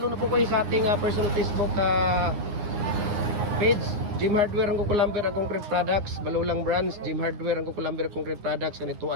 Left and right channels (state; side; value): late; left; 9.6 ms